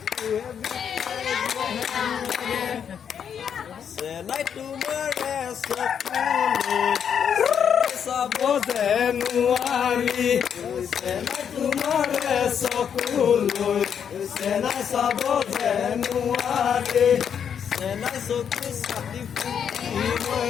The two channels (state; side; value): quieter; right; 7.9 dB